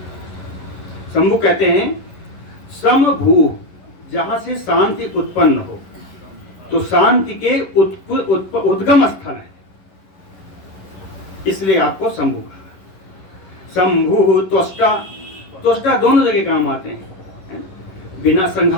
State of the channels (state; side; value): late; right; 11 ms